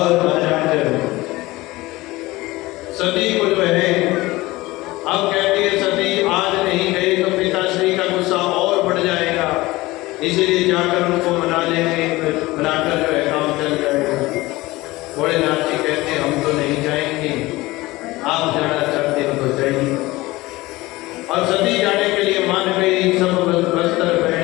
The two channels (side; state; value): right; quieter; 19.8 dB